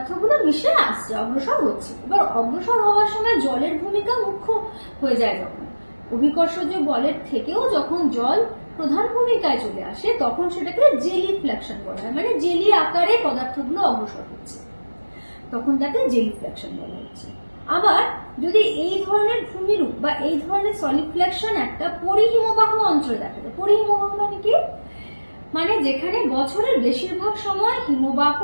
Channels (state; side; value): inverted; both; correlation -1.00